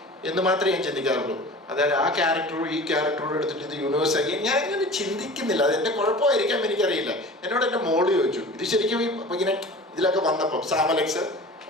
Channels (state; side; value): normal; both; correlation 0.39